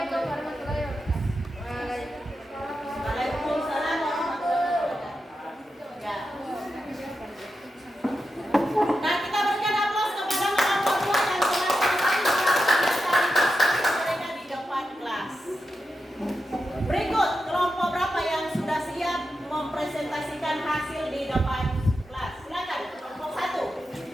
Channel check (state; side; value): normal; both; correlation 0.88